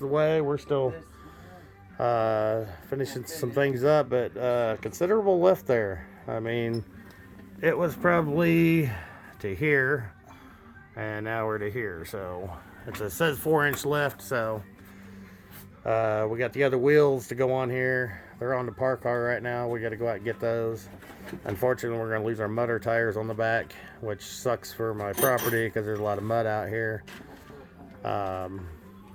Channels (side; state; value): both; identical; correlation 1.00